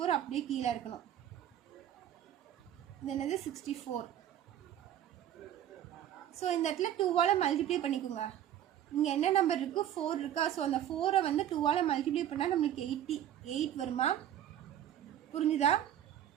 அப்படியே கீழே இருக்கணும். இது என்னது? 64. ஸோ இந்த இடத்துல 2ஆல் மல்டிப்ளை பண்ணிக்கோங்க. இங்கே என்ன நம்பர் இருக்குது? 4 இருக்கா? ஸோ அந்த 4ஐ வந்து 2ஆல் மல்டிப்ளை பண்ணால் நம்மளுக்கு 88 வருமா? புரிஞ்சுதா?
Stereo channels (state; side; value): quieter; left; 11.1 dB